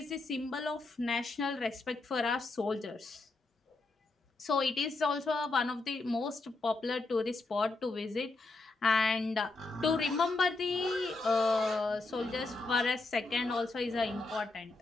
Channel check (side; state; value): right; quieter; 3.4 dB